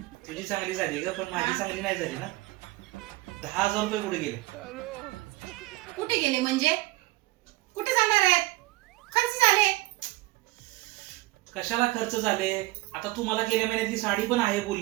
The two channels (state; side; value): quieter; left; 20.1 dB